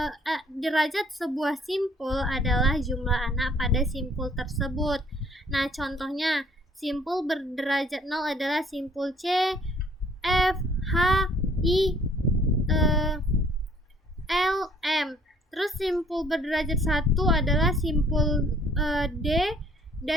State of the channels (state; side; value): normal; both; correlation 0.60